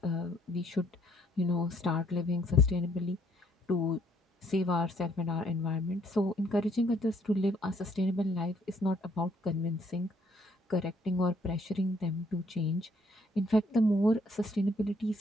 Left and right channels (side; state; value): both; normal; correlation 0.67